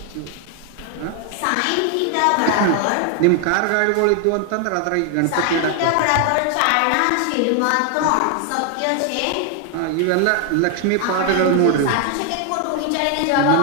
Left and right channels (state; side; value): different; both; correlation 0.00